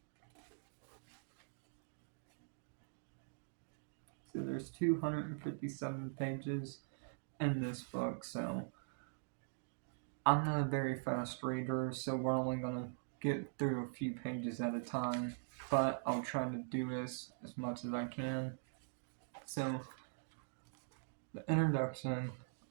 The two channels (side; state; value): left; silent; digital silence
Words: So there's 257 pages in this book, so I'm not a very fast reader, so we're only gonna get through a few pages at a time, but I'll try to do this as much as I can. So, the introduction,